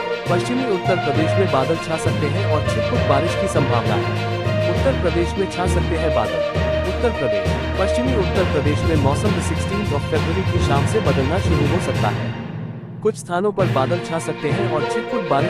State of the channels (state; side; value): identical; both; correlation 1.00